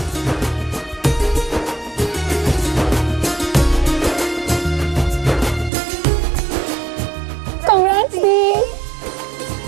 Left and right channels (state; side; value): drops out; left; at 5.7 s